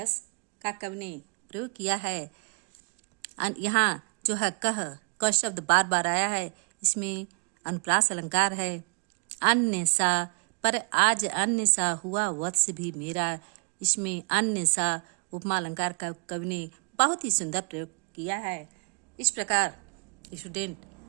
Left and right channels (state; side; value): quieter; left; 37.5 dB